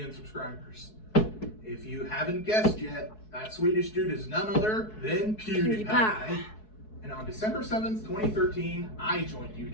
subscribers. If you haven't guessed yet, that Swedish dude is none other than PewDiePie. And on December 7th, 2013, I joined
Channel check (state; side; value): late; right; 4.7 ms